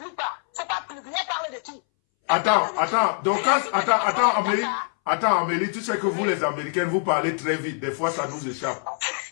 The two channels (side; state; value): right; silent; 61 dB below the other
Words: pas. C'est pas publié, parle de qui? Attends, donc, attends, Amélie, tu sais que vous, les Américaines, vous parlez très vite. Des fois, ça nous échappe.